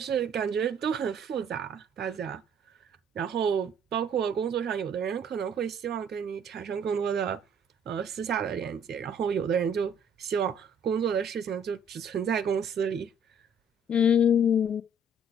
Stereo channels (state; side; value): normal; both; correlation 0.59